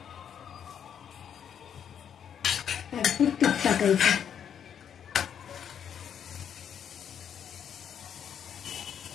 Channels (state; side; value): quieter; right; 8.5 dB